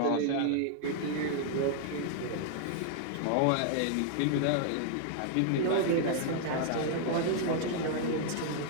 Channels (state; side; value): different; both; correlation 0.00